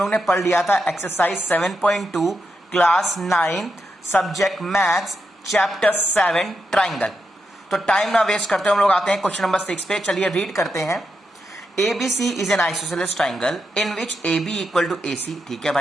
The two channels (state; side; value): normal; both; correlation 0.84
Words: ने पढ़ लिया था। Exercise 7.2 class 9 subject maths chapter 7 triangle. तो टाइम ना वेस्ट करते हम लोग आते हैं क्वेश्चन नंबर 6 पे। चलिए रीड करते हैं। ABC is an isosceles triangle in which AB equal to AC। ठीक है